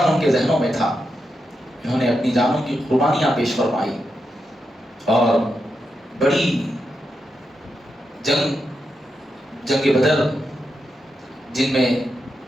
ان کے ذہنوں میں تھا۔ انہوں نے اپنی جانوں کی قربانیاں پیش فرمائی اور بڑی جنگ بدر، جن میں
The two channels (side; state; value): both; normal; correlation 0.86